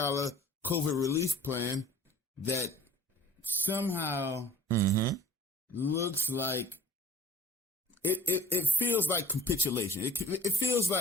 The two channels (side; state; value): both; normal; correlation 0.47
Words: relief plan that somehow looks like it feels like capitulation. It feels